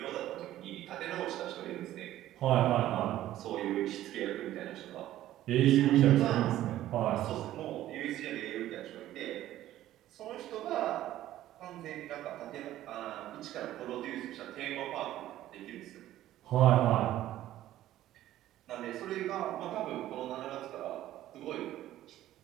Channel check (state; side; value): quieter; left; 13.7 dB